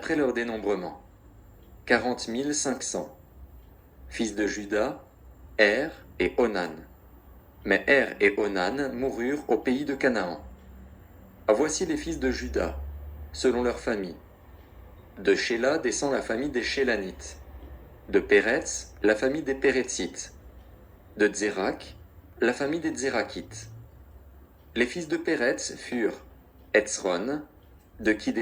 leur dénombrement. 40 500. Fils de Juda, Er et Onan. Mais Er et Onan moururent au pays de Canaan. Voici les fils de Juda, selon leur famille. De Shéla descend la famille des Shélanites. De Péretz, la famille des Péretzites. De Tsérak, la famille des Tsérakites. Les fils de Péretz furent Etzron, de qui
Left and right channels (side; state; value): both; identical; correlation 1.00